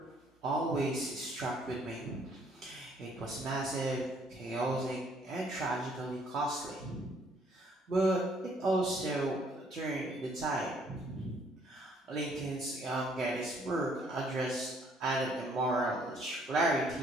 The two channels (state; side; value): normal; both; correlation 0.64